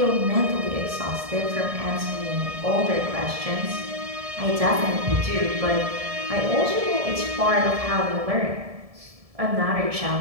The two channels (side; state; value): left; late; 1.7 ms